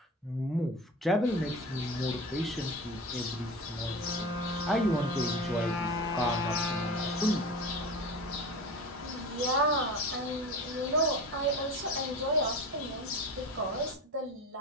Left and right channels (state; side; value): normal; both; correlation 0.31